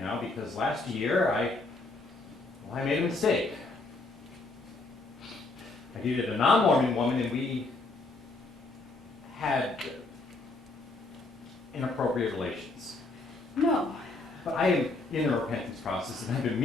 now because last year I made a mistake. I dated a non-Mormon woman and we had inappropriate relations. No, But I am in the repentance process, and I've been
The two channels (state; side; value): quieter; right; 3.3 dB